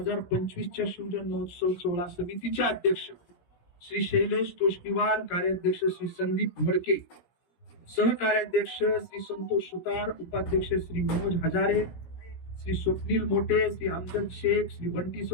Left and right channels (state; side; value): late; right; 17 ms